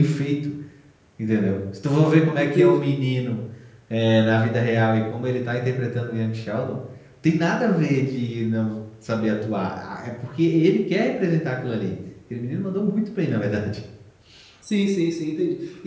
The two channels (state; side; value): identical; both; correlation 1.00